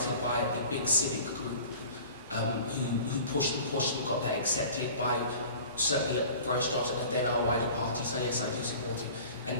by a big civic group who pushed and got that accepted by certainly Boris Johnson and then our wider party. So yes, I do support it.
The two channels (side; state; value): both; inverted; correlation -0.42